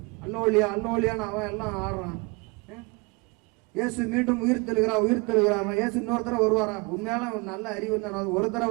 அல்லோலியா அல்லோலியான்னு அவன் எல்லாம் ஆடுறான். இயேசு மீண்டும் உயிர் தெழுகிறார். இயேசு இன்னொரு தடவை வருவாரா? உண்மையால நல்ல அறிவு இருந்தா ஒரு தடவை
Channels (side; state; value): left; quieter; 28.0 dB